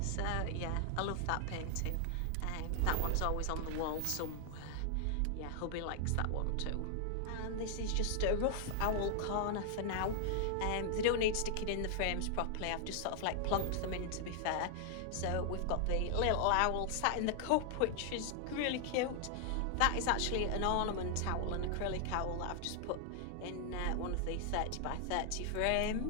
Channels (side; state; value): both; different; correlation 0.00